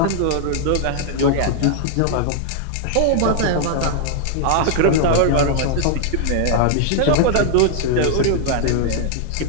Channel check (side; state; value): both; different; correlation 0.00